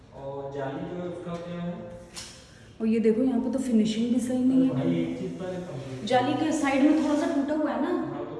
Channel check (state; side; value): identical; both; correlation 1.00